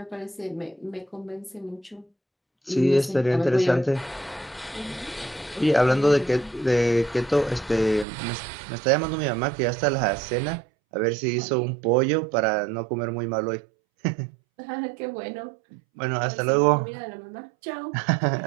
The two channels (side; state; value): left; drops out; at 8.1 s